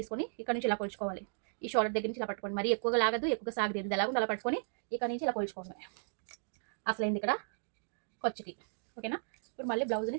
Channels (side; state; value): left; silent; digital silence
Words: ఇక్కడ నుంచి ఇలా కొలుచుకోవాలి. ఈ షోల్డర్ దగ్గర నుంచి ఇలా పట్టుకోండి, మరి ఎక్కువగా లాగదు, ఎక్కువగా సాగలేదు, ఇది ఎలాగో అలా పట్టుకొని ఇక్కడ నుంచి ఇలా కొలుచుకోండి. అసలైంది ఇక్కడ ఖర్చుకి. ఓకేనా, ఇప్పుడు మళ్ళీ బ్లౌజ్ని